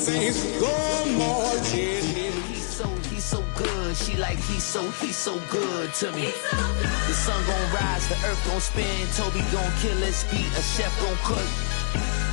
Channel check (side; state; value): right; silent; digital silence